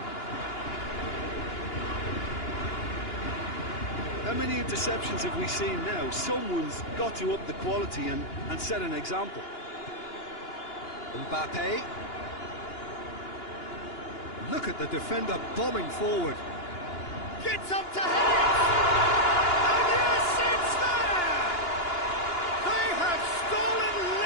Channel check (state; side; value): late; right; 2.9 ms